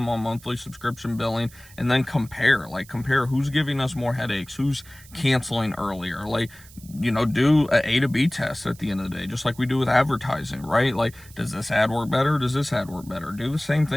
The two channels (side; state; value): right; noise; hiss, 22 dB below the sound